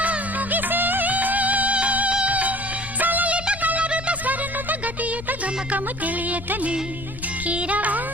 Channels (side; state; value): left; noise; rumble, 12 dB below the sound